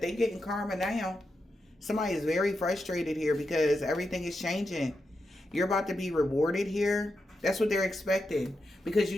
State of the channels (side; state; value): both; normal; correlation 0.87